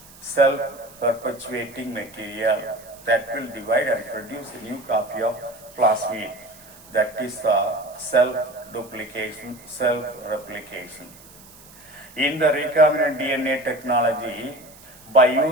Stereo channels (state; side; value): noise; right; hiss, 22 dB below the sound